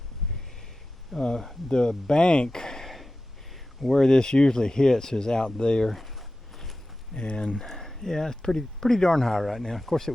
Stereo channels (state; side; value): normal; both; correlation 0.94